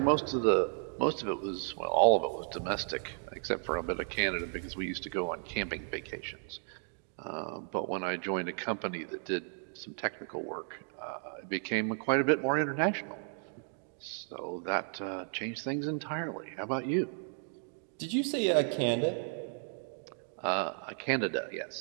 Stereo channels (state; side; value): silent; left; 55 dB below the other